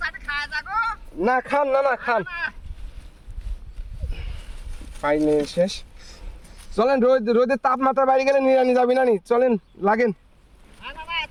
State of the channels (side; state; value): both; identical; correlation 1.00